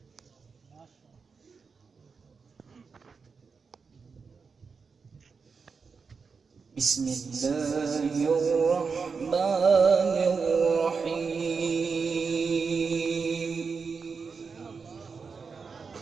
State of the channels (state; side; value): quieter; left; 5.2 dB